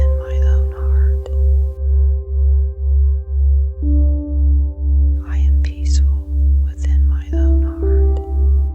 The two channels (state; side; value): identical; both; correlation 1.00